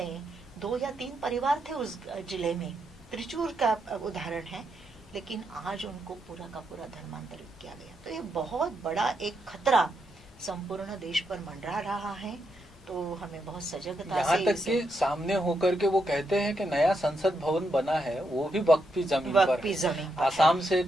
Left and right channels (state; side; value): normal; both; correlation 0.81